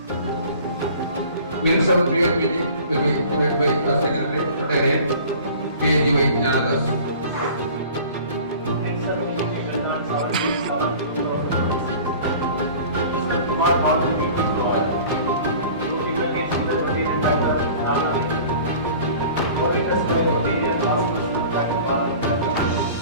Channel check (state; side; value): inverted; both; correlation -0.44